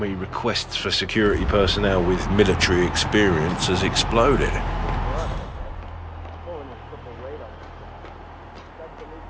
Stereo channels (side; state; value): both; identical; correlation 1.00